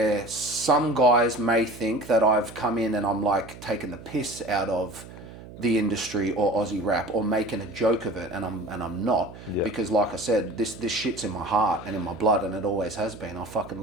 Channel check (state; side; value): noise; right; hum, 16 dB below the sound